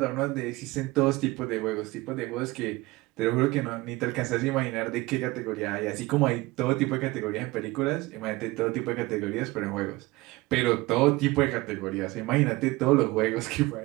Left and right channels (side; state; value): left; quieter; 21.1 dB